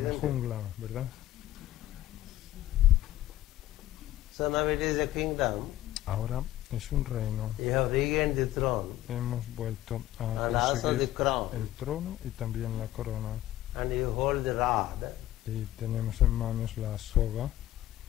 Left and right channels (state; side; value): quieter; right; 14.3 dB